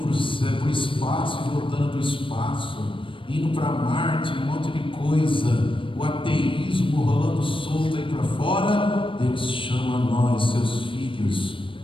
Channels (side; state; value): right; late; 0.25 ms